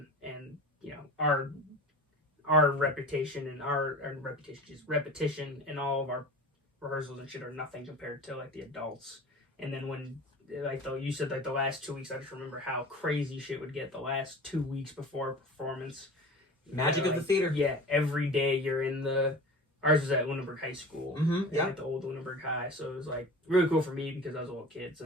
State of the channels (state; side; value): normal; both; correlation 0.37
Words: and, our reputation and repetition and all of our rehearsals and shit are nothing compared to like the adults. And then when you said like the last 2 weeks, I just remember how crazy shit would get the last 2 weeks before a performance. Magic of the theater. Yeah, every day you're in ours was at Lunenburg High School. At the old Lunenburg High. So it was like really cool for me because I was a little kid. So